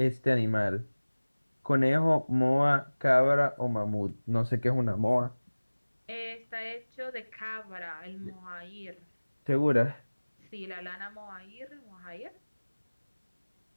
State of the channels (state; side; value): inverted; both; correlation -1.00